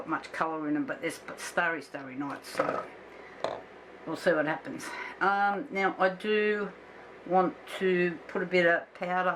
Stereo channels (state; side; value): identical; both; correlation 1.00